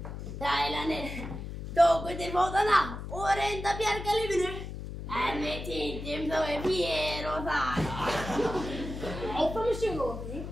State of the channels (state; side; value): noise; left; hum, 8 dB below the sound